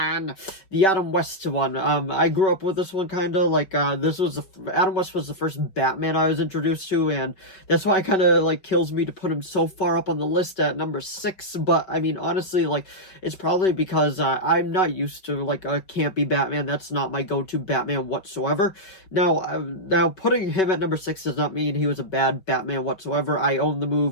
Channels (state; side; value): late; right; 5.3 ms